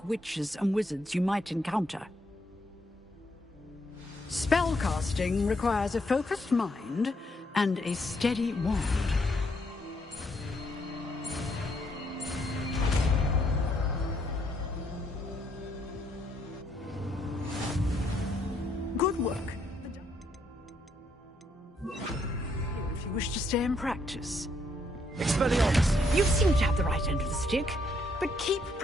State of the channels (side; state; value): both; normal; correlation 0.73